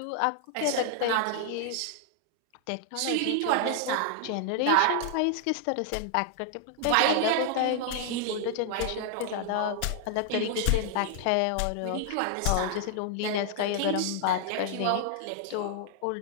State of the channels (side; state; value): both; different; correlation 0.00